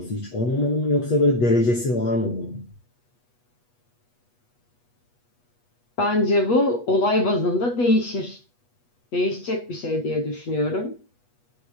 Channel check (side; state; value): right; late; 8.3 ms